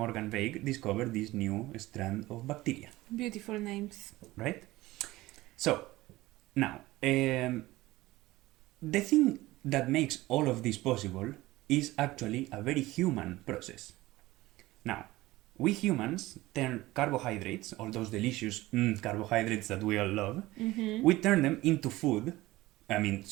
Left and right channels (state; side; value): quieter; left; 18.3 dB